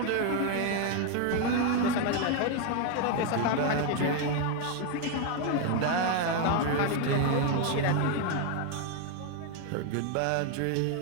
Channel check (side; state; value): both; different; correlation 0.01